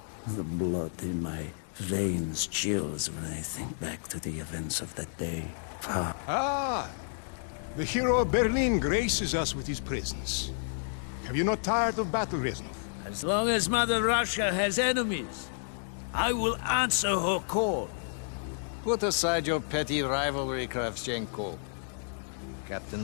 the blood in my veins chills when I think back to the events of that day. The hero of Berlin graces us with his presence. Have you not tired of battle, Reznov? As long as Mother Russia has enemies, I will answer her call. Put aside your petty rivalry, Kravchenko. Captain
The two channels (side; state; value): right; silent; digital silence